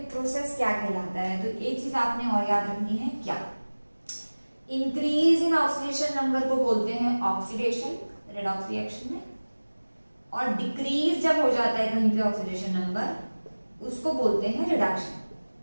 प्रोसेस क्या कहलाता है? तो एक चीज आपने और याद रखनी है, क्या? इंक्रीज इन ऑक्सीडेशन नंबर को बोलते हैं ऑक्सीडेशन, रेडॉक्स रिएक्शन में, और डिक्रीज जब हो जाता है कहीं पे ऑक्सीडेशन नंबर, उसको बोलते हैं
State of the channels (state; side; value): inverted; both; correlation -1.00